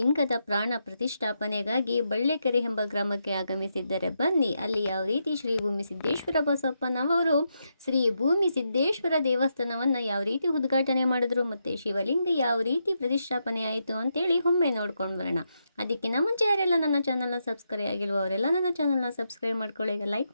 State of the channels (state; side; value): inverted; both; correlation -0.83